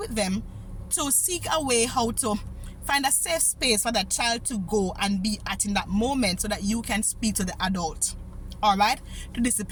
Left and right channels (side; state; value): both; identical; correlation 1.00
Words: them to seek a way how to Find a safe space for that child to go and be at in that moment so that you can speak to the adult. All right? To